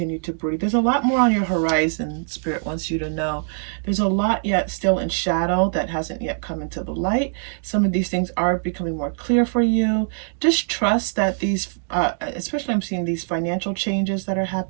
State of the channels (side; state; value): left; silent; digital silence